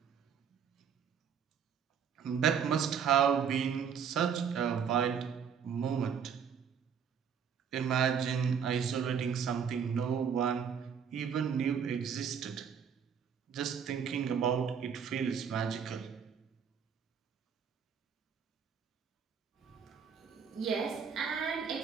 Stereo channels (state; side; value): quieter; left; 7.3 dB